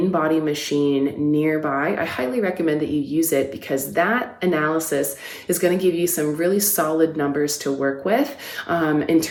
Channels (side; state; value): both; identical; correlation 1.00